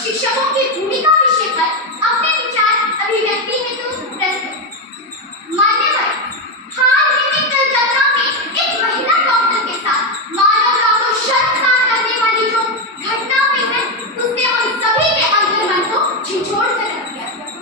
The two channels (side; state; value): both; normal; correlation 0.08